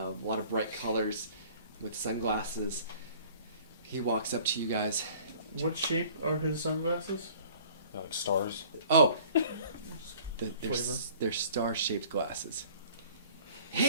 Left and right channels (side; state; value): both; inverted; correlation -0.51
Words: lot of bright colors, with sunglasses. He walks up to you guys. What shape are his sunglasses? Like stars. Oh, they're Flavor? they're star-shaped glasses.